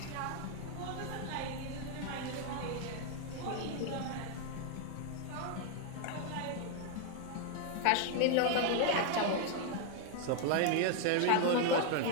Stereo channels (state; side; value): different; both; correlation 0.00